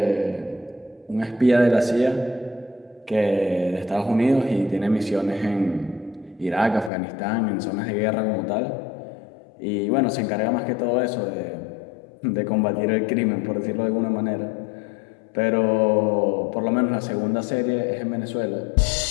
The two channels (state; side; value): drops out; right; at 6.9 s